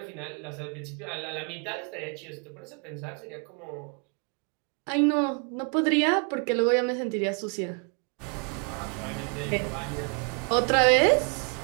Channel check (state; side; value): quieter; left; 38.9 dB